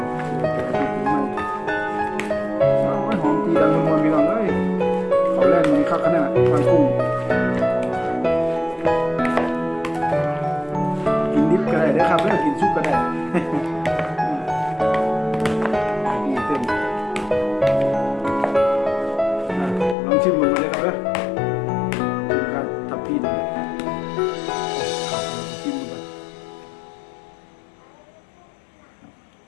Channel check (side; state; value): right; drops out; at 20.0 s